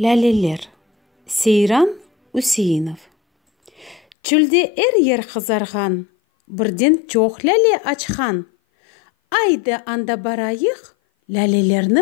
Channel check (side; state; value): right; drops out; at 4.2 s